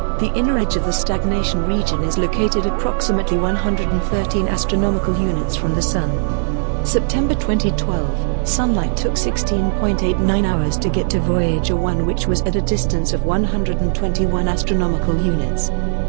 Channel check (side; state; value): left; silent; digital silence